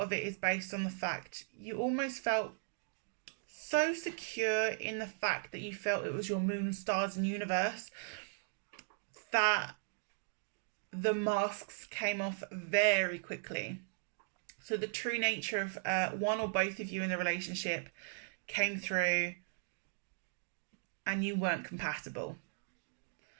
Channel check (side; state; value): left; silent; digital silence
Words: of it is based on the fact you almost felt so secure in the fact that you felt it was your moon, stars, and universe that the masks came off very quickly. So the true nature of one or both of you in the relationship came through and you weren't compatible.